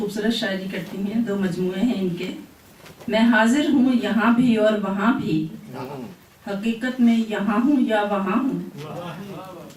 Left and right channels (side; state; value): both; identical; correlation 1.00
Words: شاعری کرتی ہیں, 2 مجموعے ہیں ان کے. میں حاضر ہوں یہاں بھی اور وہاں بھی, حقیقت میں یہاں ہوں یا وہاں ہوں.